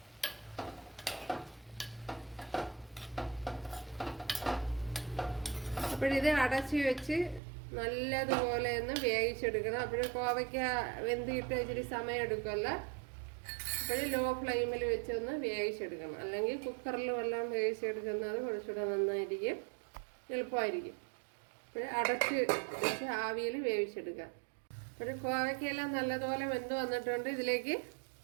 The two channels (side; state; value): left; drops out; at 7.4 s